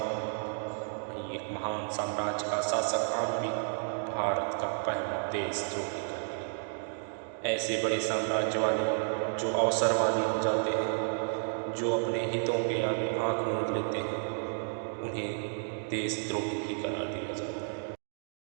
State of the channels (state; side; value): silent; left; digital silence